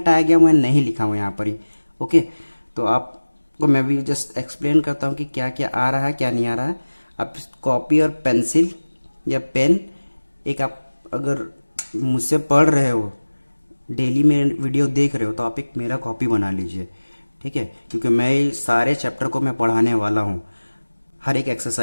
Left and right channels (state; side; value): inverted; both; correlation -1.00